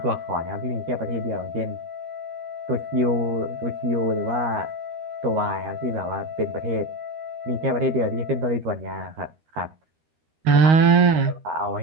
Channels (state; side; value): late; left; 13 ms